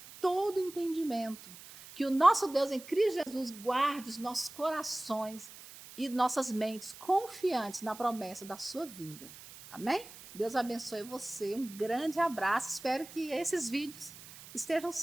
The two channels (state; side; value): noise; right; hiss, 17 dB below the sound